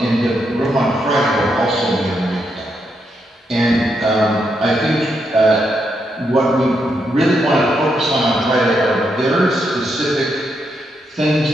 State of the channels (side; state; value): both; normal; correlation 0.80